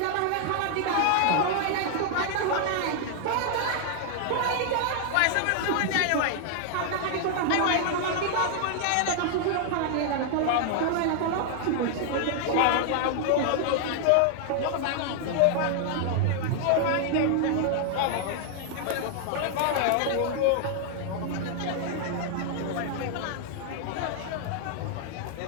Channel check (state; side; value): different; both; correlation 0.00